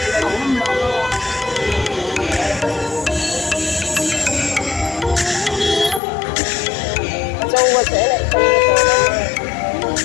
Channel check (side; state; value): right; drops out; at 6.0 s